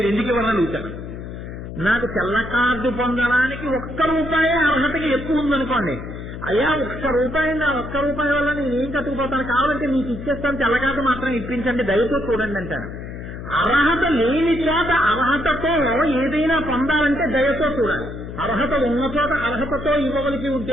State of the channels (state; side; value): noise; left; hum, 10 dB below the sound